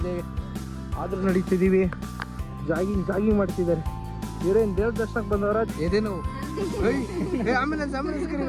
ಆದರೂ ನಡೀತಿದ್ದೀವಿ. ಜಾಗಿಂಗ್ ಮಾಡ್ತಿದ್ದಾರೆ. ಇವರೇನು ದೇವ್ರ ದರ್ಶನಕ್ಕೆ ಬಂದವರ ಎದೇನು ಆಂಬುಲೆನ್ಸ್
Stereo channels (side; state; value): both; identical; correlation 1.00